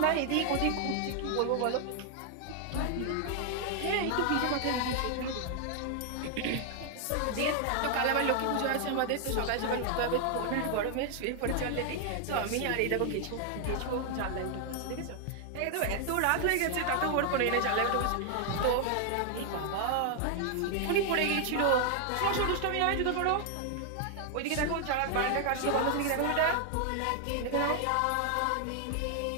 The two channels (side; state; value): both; different; correlation 0.00